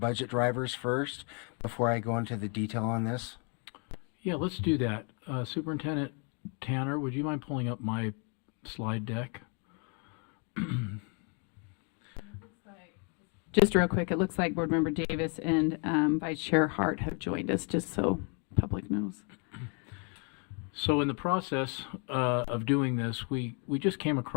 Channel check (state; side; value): quieter; right; 35.1 dB